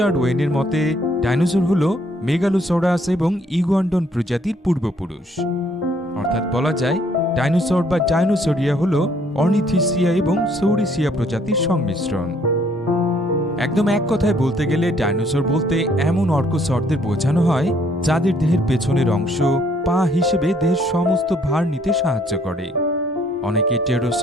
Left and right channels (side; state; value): both; normal; correlation 0.65